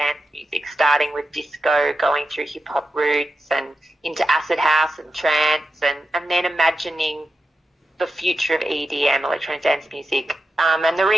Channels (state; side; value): normal; both; correlation 0.89